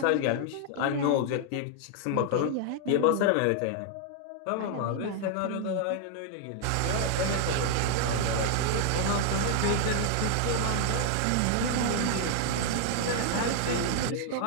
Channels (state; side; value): different; both; correlation 0.00